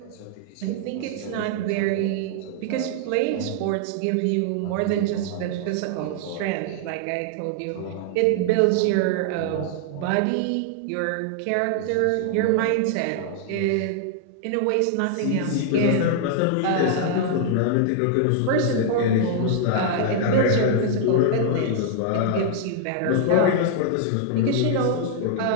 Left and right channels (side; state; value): both; different; correlation -0.01